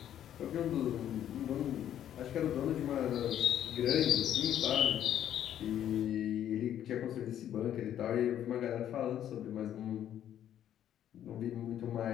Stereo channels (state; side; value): quieter; right; 10.7 dB